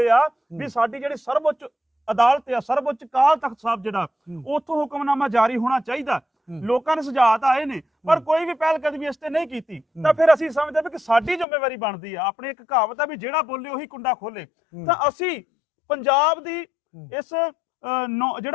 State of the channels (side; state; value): right; drops out; at 11.5 s